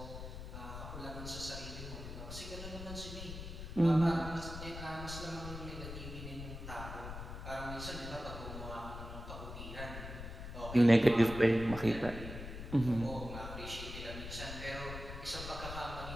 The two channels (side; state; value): left; noise; rumble, 9 dB below the sound